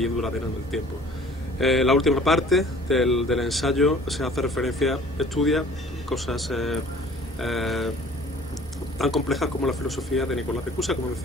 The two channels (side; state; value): both; normal; correlation 0.50